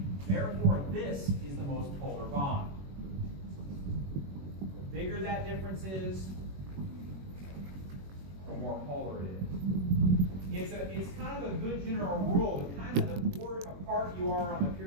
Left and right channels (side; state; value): left; late; 21 ms